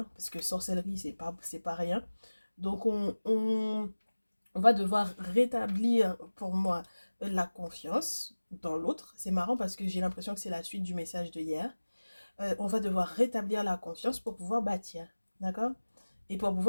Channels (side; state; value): both; inverted; correlation -1.00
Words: parce que sorcellerie c'est pas rien. Donc on va devoir rétablir pour moi la confiance dans l'autre. C'est marrant parce que j'ai l'impression que c'est la suite du message de hier. On va devoir rétablir la confiance pour pouvoir bâtir, d'accord? Et pour